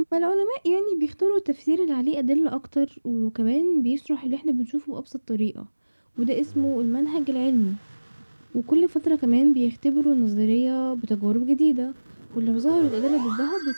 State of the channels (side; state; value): both; inverted; correlation -1.00